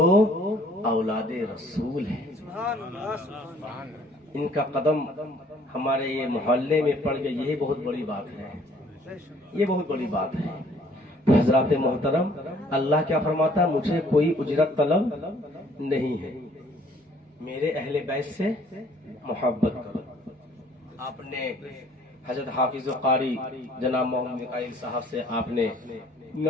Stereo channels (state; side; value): normal; both; correlation 0.59